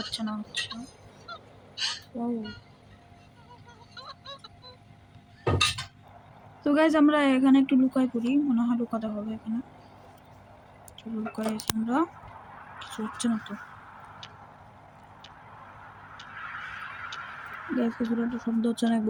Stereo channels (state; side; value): identical; both; correlation 1.00